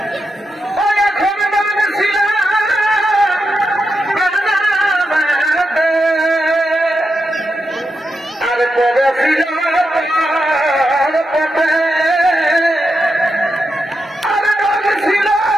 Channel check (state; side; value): normal; both; correlation 0.86